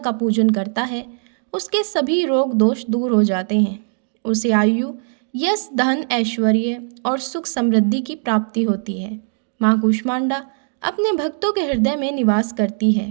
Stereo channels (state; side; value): silent; left; digital silence